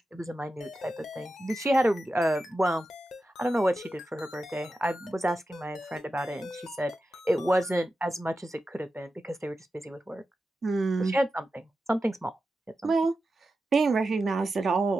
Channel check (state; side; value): normal; both; correlation 0.91